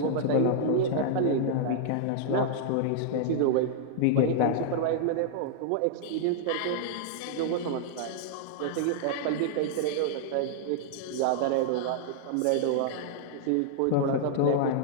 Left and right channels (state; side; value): different; both; correlation -0.01